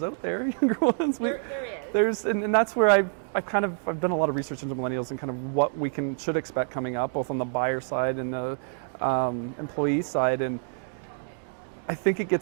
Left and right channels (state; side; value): silent; left; 60 dB below the other